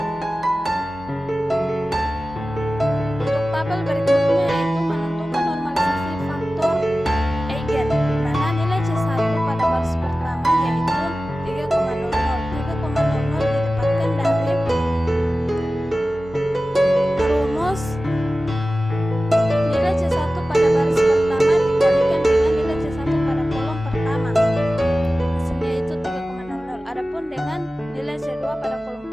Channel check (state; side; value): normal; both; correlation 0.95